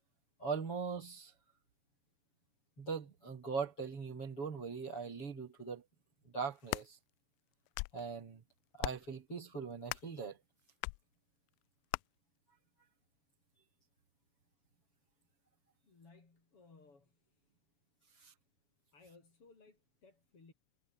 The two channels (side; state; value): right; late; 7.1 ms